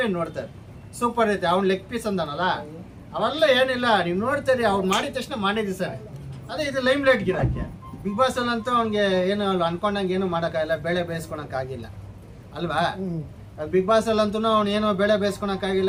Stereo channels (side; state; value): both; identical; correlation 1.00